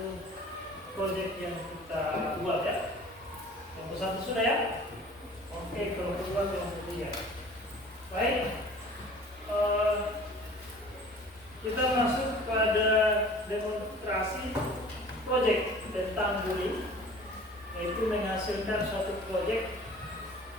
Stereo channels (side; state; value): both; normal; correlation 0.46